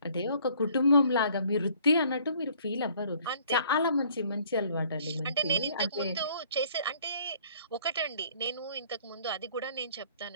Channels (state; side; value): inverted; both; correlation -0.58